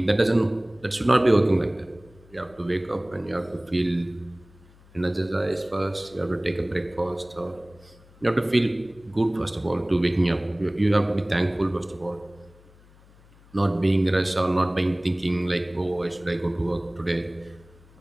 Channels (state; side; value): noise; left; hum, 26 dB below the sound